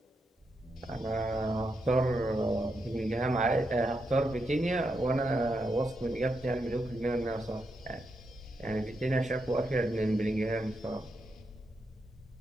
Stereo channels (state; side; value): normal; both; correlation 0.83